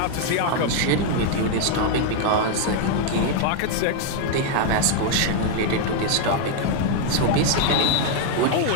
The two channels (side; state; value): both; different; correlation 0.00